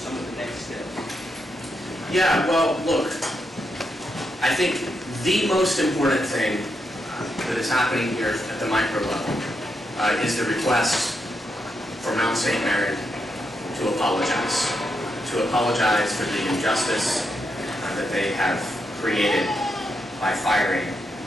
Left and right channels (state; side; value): normal; both; correlation 0.82